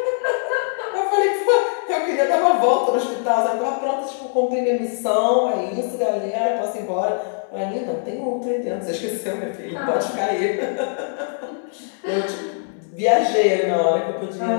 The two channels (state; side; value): silent; right; digital silence